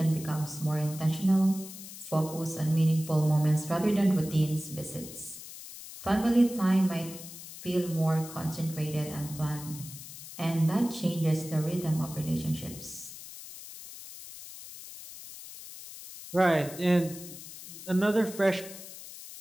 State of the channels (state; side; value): noise; left; hiss, 13 dB below the sound